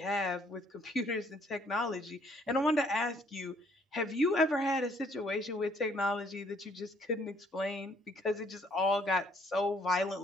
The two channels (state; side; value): normal; both; correlation 0.64